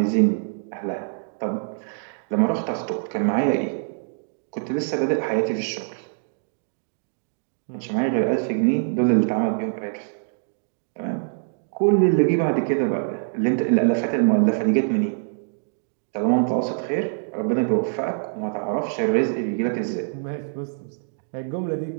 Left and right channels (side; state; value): left; silent; digital silence